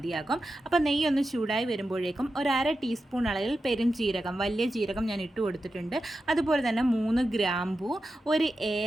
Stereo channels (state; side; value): normal; both; correlation 0.90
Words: അപ്പോൾ നെയ്യ് ഒന്ന് ചൂടായി വരുമ്പോഴേക്കും 1/2 ടീസ്പൂൺ അളവിൽ പെരുംജീരകം, വലിയ ജീരകം ഞാൻ ഇട്ട് കൊടുത്തിട്ടുണ്ട്. അതുപോലെ തന്നെ 3 ഗ്രാമ്പൂ, 1